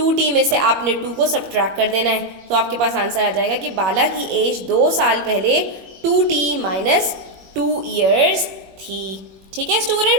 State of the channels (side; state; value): left; late; 21 ms